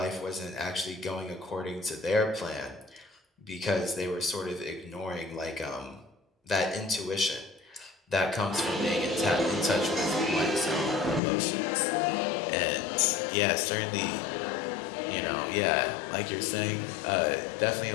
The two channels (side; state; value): right; drops out; at 11.2 s